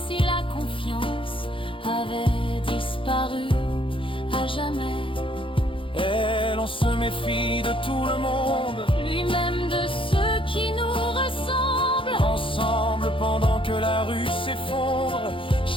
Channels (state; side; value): late; right; 0.25 ms